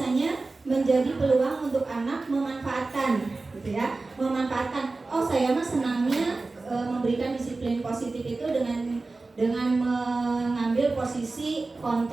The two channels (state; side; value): quieter; left; 3.5 dB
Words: menjadi peluang untuk anak memanfaatkan, gitu ya, memanfaatkan. Oh, saya mah senangnya memberikan disiplin positif itu dengan mengambil posisi